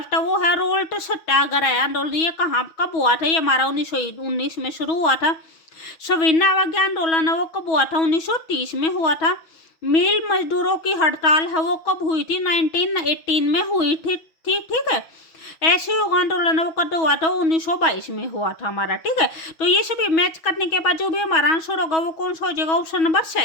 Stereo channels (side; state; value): right; late; 6.2 ms